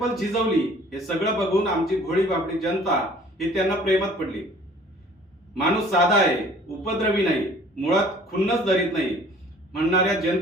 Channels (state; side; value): normal; both; correlation 0.52